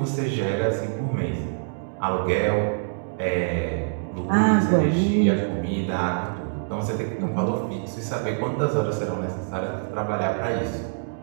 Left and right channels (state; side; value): silent; left; digital silence